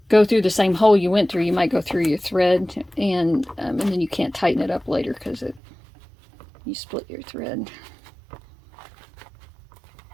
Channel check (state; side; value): drops out; left; at 5.6 s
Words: go through the same hole you went through, you might go through your thread, and then you can't tighten it up later because you split your thread.